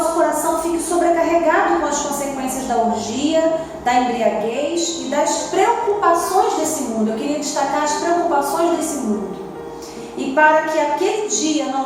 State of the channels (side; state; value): both; identical; correlation 1.00